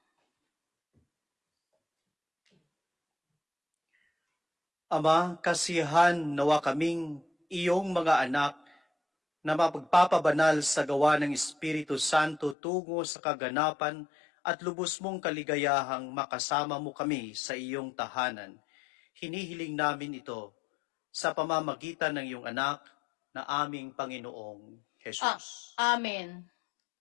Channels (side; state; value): right; drops out; at 12.6 s